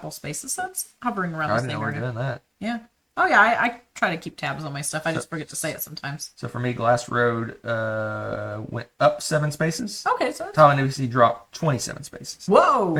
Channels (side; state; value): both; identical; correlation 1.00